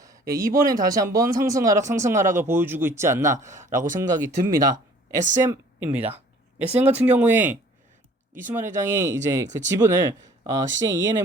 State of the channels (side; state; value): both; normal; correlation 0.53